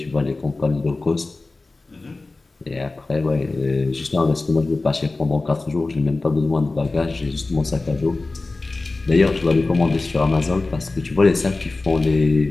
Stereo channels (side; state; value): right; quieter; 3.4 dB